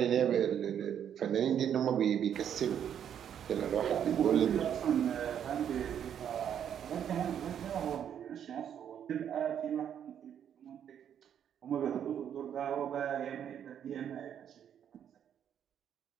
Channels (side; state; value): left; quieter; 9.1 dB